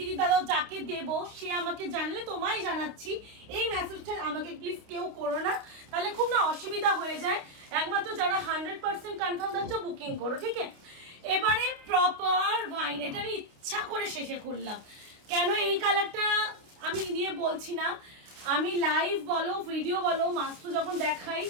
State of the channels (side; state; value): left; late; 29 ms